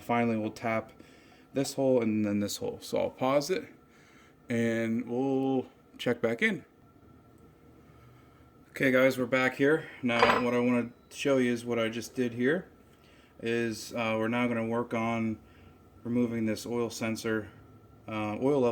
we'll tap this hole and then this hole. So I'll pause it and we'll check back in. Okay guys, we're back here. Now what I want to show you is what I just did here. Is we're now going to work on removing this oil sensor, oil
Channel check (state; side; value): identical; both; correlation 1.00